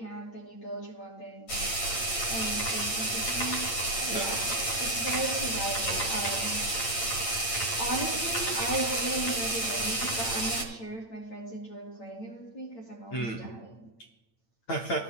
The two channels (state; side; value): late; right; 8.9 ms